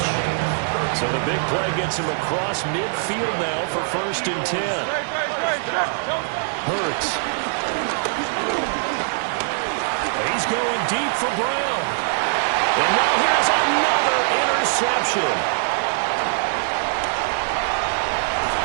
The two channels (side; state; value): left; silent; 58 dB below the other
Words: So the big play gets him across midfield now for 1st and 10. Hurts. He's going deep for Brown. And now here's another interception.